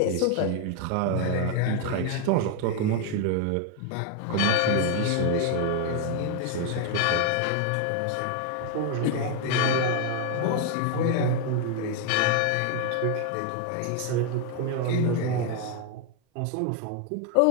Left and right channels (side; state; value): both; different; correlation 0.01